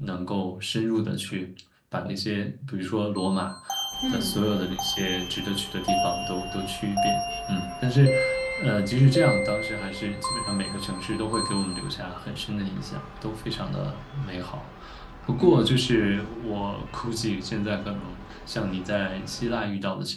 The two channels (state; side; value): identical; both; correlation 1.00